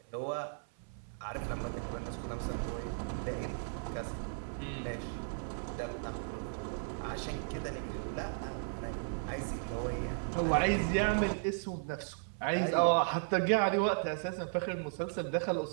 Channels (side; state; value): left; silent; 54 dB below the other